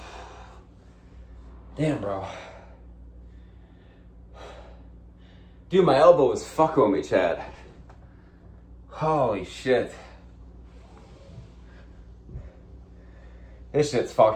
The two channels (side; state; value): both; identical; correlation 1.00